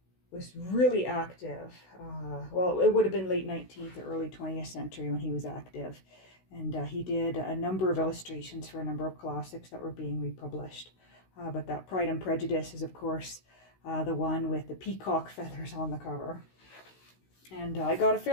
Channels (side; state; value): right; late; 16 ms